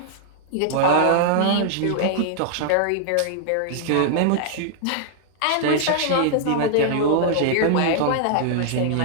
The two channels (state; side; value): different; both; correlation -0.01